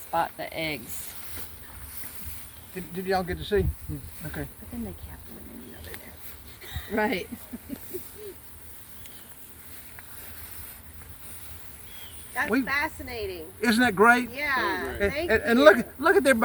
the eggs. Did y'all get to see? Okay. But then they cap them and then you know they're there. Right. That's fascinating. Isn't that great? Yeah, And, thank and you. look at their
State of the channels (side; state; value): both; identical; correlation 1.00